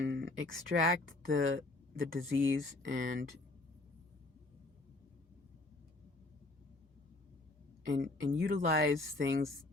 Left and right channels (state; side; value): quieter; right; 3.0 dB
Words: extract the disease and utilize things